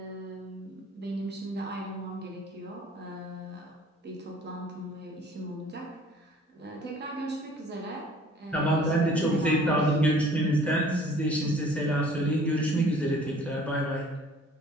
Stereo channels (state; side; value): normal; both; correlation 0.53